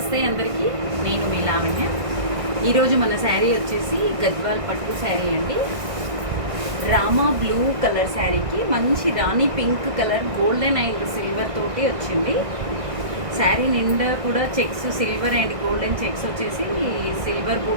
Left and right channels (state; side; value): late; left; 1.6 ms